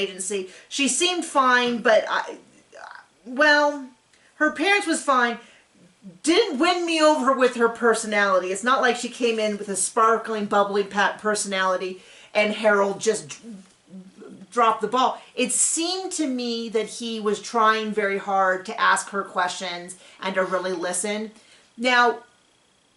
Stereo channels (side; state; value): both; identical; correlation 1.00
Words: She seemed fine, but her appearance was fine. Didn't win me over with her personality. It's not like she came in with a sparkling, bubbly personality and Harold just dropped the ball. It seemed to me that he was trying very hard to ask her questions and to really listen. Now,